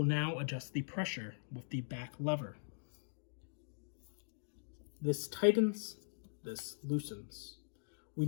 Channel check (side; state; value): right; silent; digital silence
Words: now adjust the pressure with the back lever. This tightens, this loosens. We